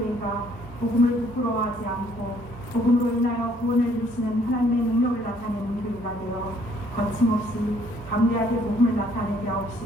복음을 부끄러워하지 않고 복음으로 인하여 구원을 이루시는 하나님의 능력을 나타내는 교회가 되어 거침없이 담대하게 복음을 나타내게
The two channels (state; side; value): normal; both; correlation 0.63